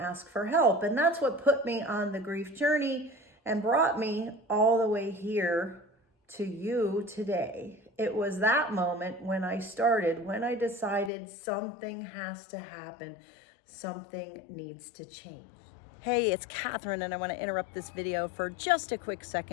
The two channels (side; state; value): right; drops out; at 11.1 s